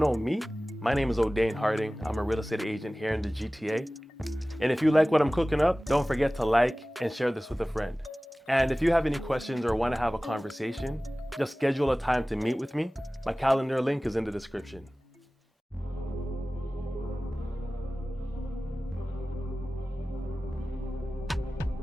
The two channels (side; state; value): both; normal; correlation 0.97